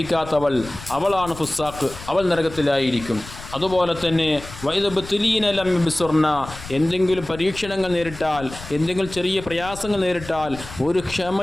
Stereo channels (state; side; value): noise; left; rumble, 15 dB below the sound